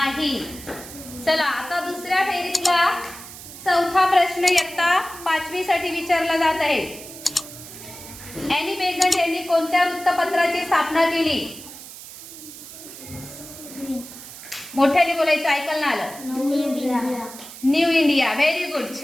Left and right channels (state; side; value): noise; right; hiss, 14 dB below the sound